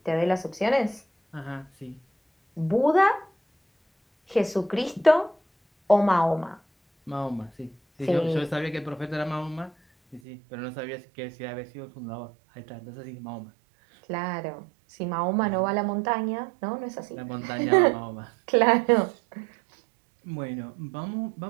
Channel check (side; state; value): left; drops out; at 10.2 s